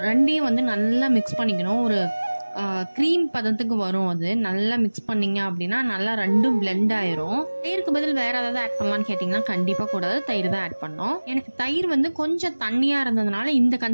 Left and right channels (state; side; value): inverted; both; correlation -1.00